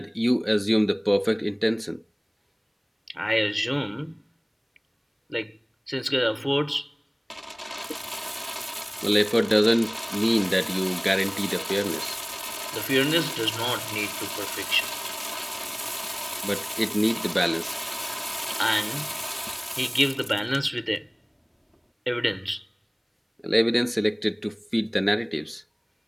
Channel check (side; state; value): both; identical; correlation 1.00